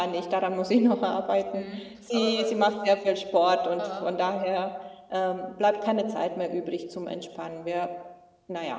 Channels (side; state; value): both; identical; correlation 1.00